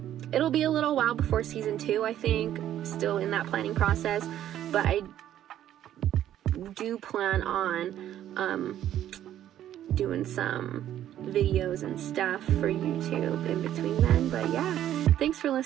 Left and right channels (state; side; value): quieter; left; 11.6 dB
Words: it'll be a little while before season 2, I think. Still in that planning process, but I do plan on doing some videos and stuff for YouTube in between then. But yeah, thanks for